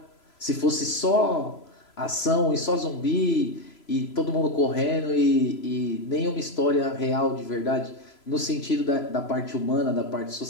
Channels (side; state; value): right; late; 3.0 ms